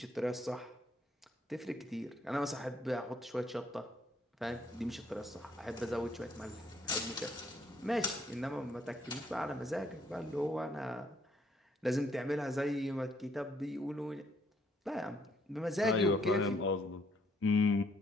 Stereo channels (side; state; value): both; normal; correlation 0.68